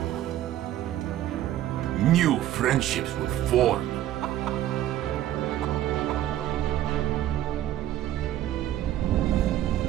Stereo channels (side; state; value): left; quieter; 12.9 dB